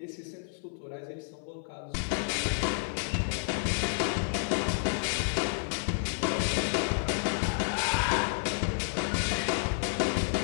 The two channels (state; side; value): silent; right; 58 dB below the other